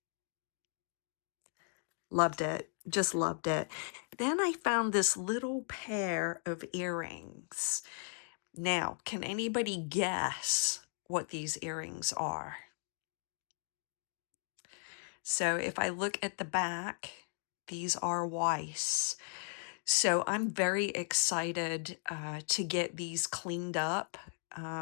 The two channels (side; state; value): right; silent; 53 dB below the other